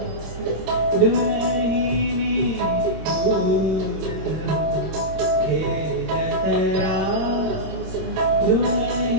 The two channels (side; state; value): left; late; 26 ms